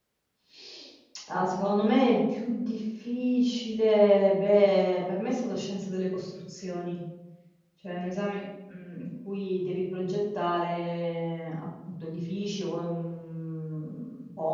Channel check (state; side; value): identical; both; correlation 1.00